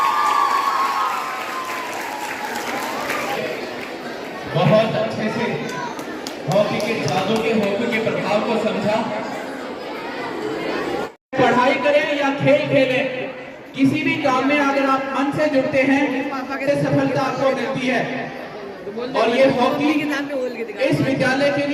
बहुत अच्छे से हॉकी के जादू के, हॉकी के प्रभाव को समझा। पढ़ाई करें या खेल खेलें, किसी भी काम में अगर आप मन से जुड़ते हैं तो सफलता आपको मिलती है। और ये हॉकी इस विद्यालय के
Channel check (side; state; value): both; identical; correlation 1.00